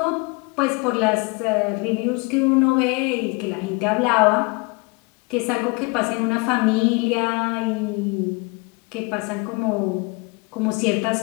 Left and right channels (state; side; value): quieter; right; 29.1 dB